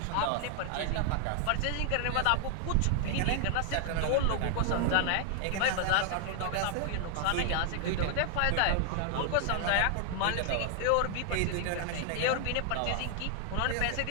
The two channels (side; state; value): both; different; correlation 0.00